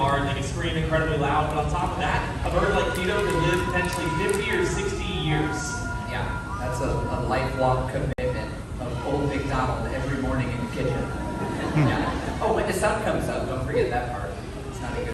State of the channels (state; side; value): identical; both; correlation 1.00